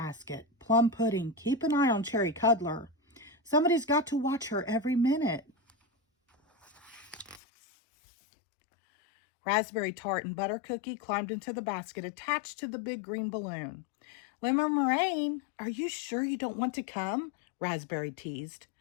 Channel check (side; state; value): right; drops out; at 7.4 s